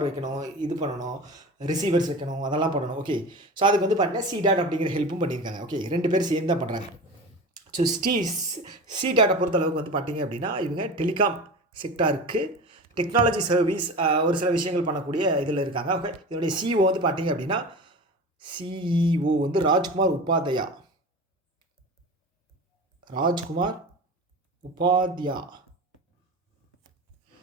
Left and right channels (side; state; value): both; normal; correlation 0.31